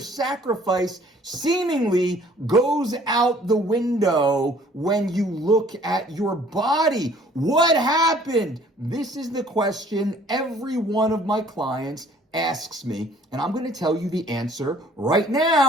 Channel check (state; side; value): normal; both; correlation 0.56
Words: sacrifice seemingly goes out the window when you look at your body. What happened? This is the question every one of my clients asks me, and I'm going to tell you the answer right